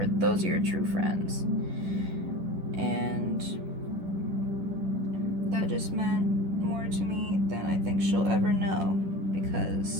those are your true friends. And that just meant more to me than I think she'll ever know,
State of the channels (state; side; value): late; left; 10 ms